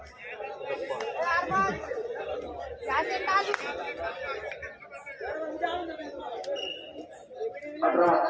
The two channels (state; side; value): identical; both; correlation 1.00